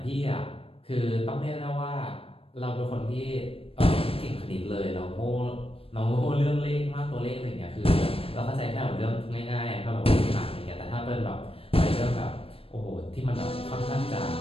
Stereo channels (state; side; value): late; right; 0.27 ms